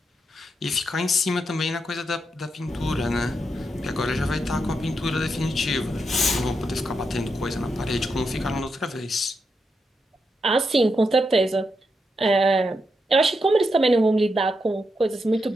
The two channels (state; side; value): normal; both; correlation 0.84